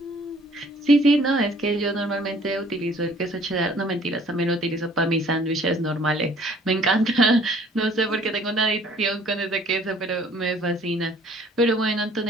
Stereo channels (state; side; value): normal; both; correlation 0.56